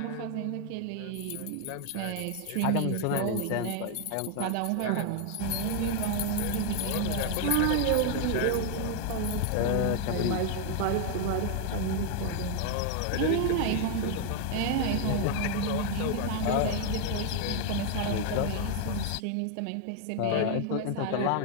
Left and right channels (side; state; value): both; different; correlation 0.00